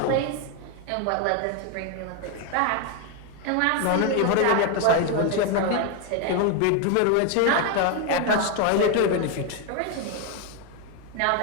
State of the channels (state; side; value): different; both; correlation 0.01